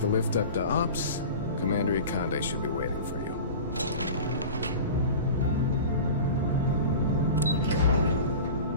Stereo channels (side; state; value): both; inverted; correlation -0.35